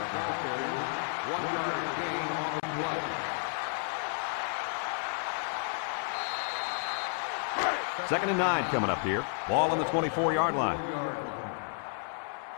Second and 9 coming up here. Ball on the 24-yard line.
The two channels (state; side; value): silent; right; 57 dB below the other